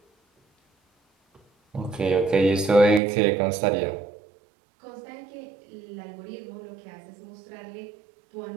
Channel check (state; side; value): drops out; left; at 3.0 s